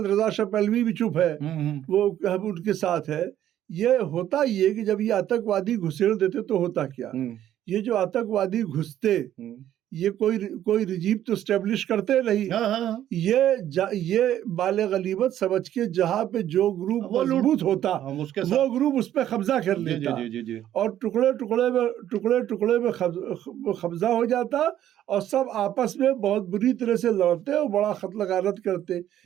रजा शाह पहलवी भी चुप है, वो हम उनके साथ है। ये होता ये कि जब ये आतंकवादी घुसेड़ देते तो होता क्या, ये जो आतंकवादी घुसते ये कोई रिजीम तो स्टेब्लिश करते नहीं। ये बाले गलीबत समझ के जहाँ पे जो ग्रुप मजबूत होता वो ग्रुप उस पर कब्जा कर लेता और टुकड़े टुकड़े में कब्जा हो जाता और सब आपस में बहुत बुरी तरह से लड़ते और बड़ा कत्ल गारत करते।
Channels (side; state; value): left; quieter; 11.7 dB